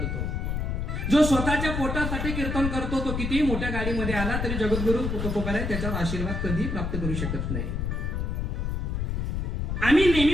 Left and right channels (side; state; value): left; noise; rumble, 1 dB below the sound